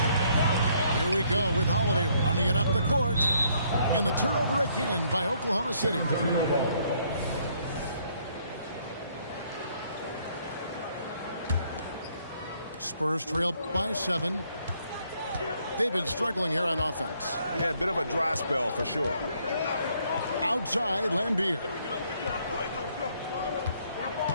Here we go with Holiday running it up the court. And the turnover again by Oklahoma City. Spurs trail by 7. They've been struggling here on offense. Yeah, a bit of a dry spell for sure. Outside, Lambier.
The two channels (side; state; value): both; inverted; correlation -0.67